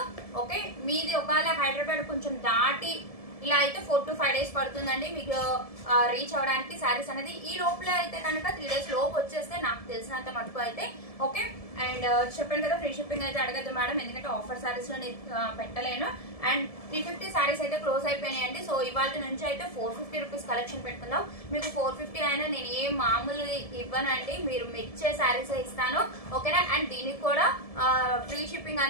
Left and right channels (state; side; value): late; right; 1.7 ms